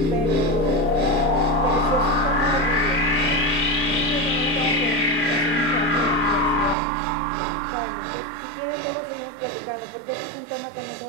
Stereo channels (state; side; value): drops out; left; at 6.8 s